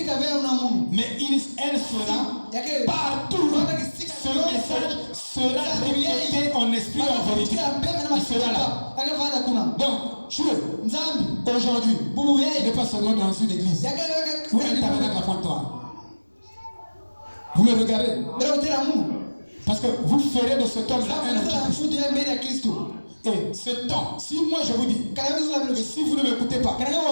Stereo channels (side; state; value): both; inverted; correlation -1.00